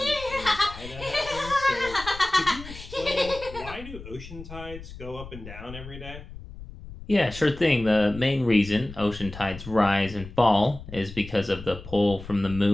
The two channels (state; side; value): noise; left; rumble, 14 dB below the sound